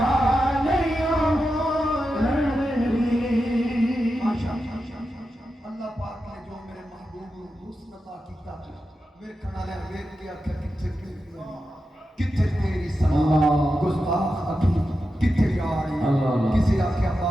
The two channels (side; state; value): both; normal; correlation 0.89